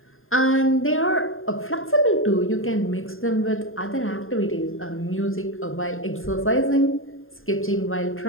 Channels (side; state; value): right; late; 0.60 ms